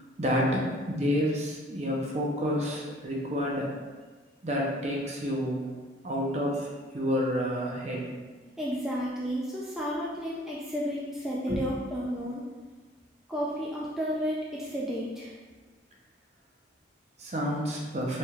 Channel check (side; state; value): both; normal; correlation 0.54